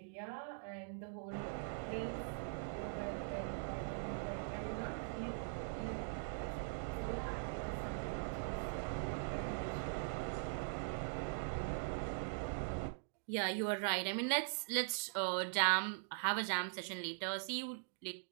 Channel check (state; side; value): silent; left; digital silence